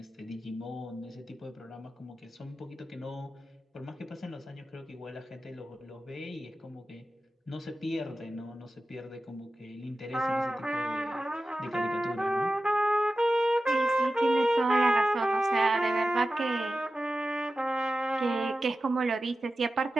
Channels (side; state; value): both; normal; correlation 0.93